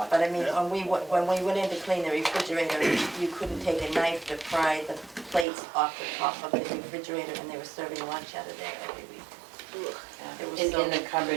But I mean, when we went in to clean the refrigerator, you couldn't take a knife to pry the plates off the top of the refrigerator, and they were serving lunch out of there every week. It was so- And the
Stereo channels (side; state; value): left; drops out; at 5.5 s